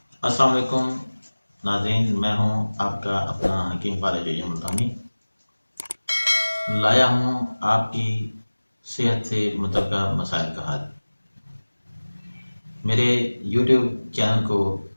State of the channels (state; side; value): inverted; both; correlation -1.00